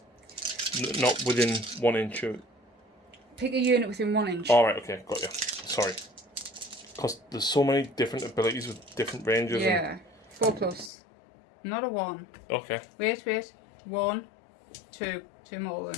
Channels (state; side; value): drops out; right; at 10.9 s